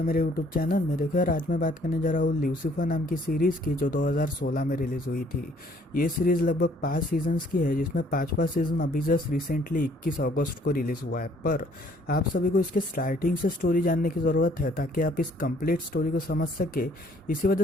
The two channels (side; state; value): both; normal; correlation 0.61